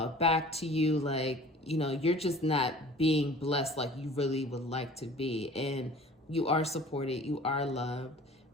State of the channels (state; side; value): normal; both; correlation 0.46